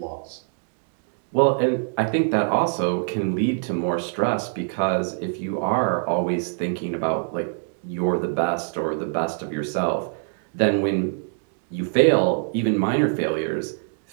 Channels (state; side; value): silent; left; digital silence